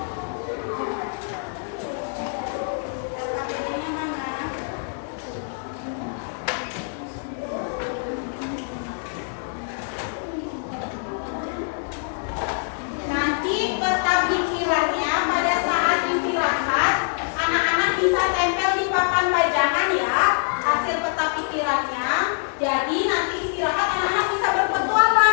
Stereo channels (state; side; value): silent; right; digital silence